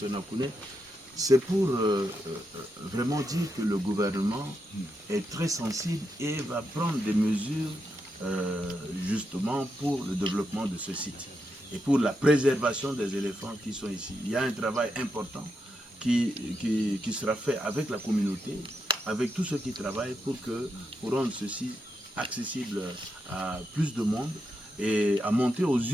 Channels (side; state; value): both; normal; correlation 0.84